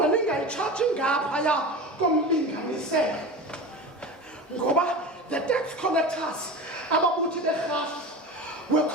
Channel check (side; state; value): both; normal; correlation 0.30